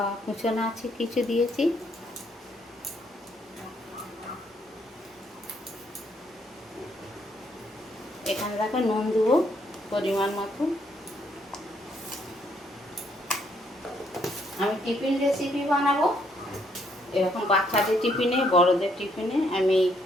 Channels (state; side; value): normal; both; correlation 0.71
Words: কুচোনো আছে কিছু দিয়েছি। এখানে দেখো নুন দেবো পরিমাণ মতো। আমি টিফিন রেসিপি বানাবো, এরকম বাচ্চাদের টিফিনে বড়দের টিফিনে। আমি